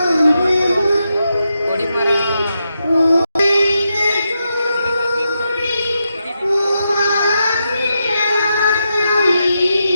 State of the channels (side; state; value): both; inverted; correlation -0.85